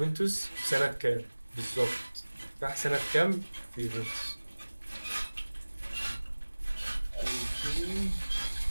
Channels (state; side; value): inverted; both; correlation -1.00